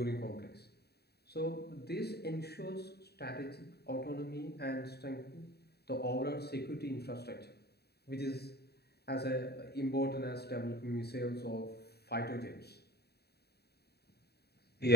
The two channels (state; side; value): late; right; 0.47 ms